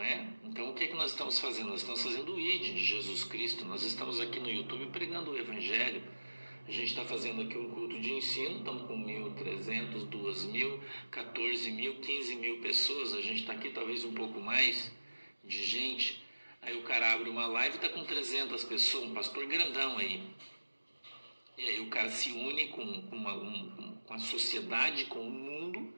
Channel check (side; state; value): both; inverted; correlation -1.00